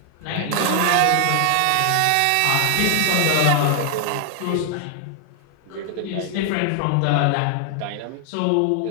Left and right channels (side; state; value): both; different; correlation 0.00